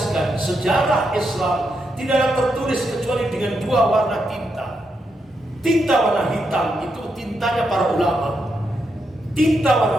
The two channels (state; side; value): normal; both; correlation 0.82